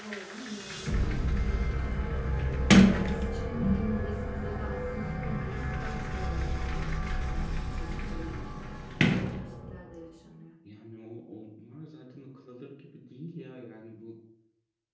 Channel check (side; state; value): both; identical; correlation 1.00